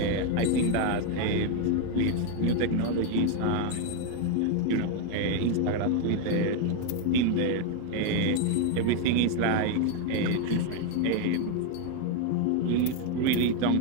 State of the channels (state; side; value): different; both; correlation 0.01